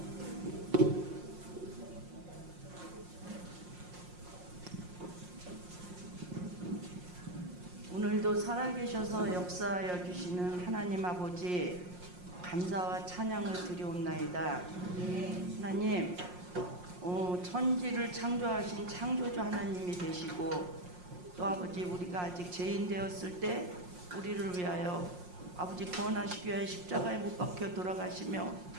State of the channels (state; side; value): late; left; 5.6 ms